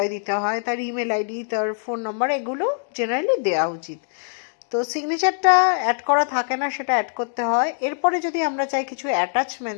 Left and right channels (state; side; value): silent; right; digital silence